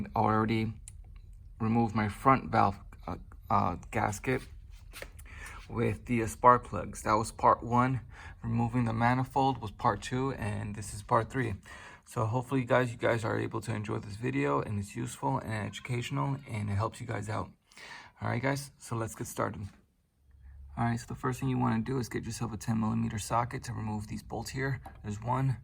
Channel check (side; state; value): both; identical; correlation 1.00